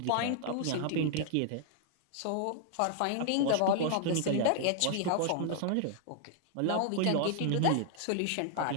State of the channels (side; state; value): both; different; correlation 0.00